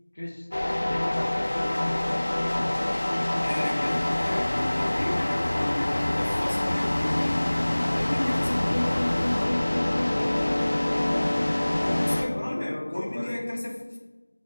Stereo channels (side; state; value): both; inverted; correlation -1.00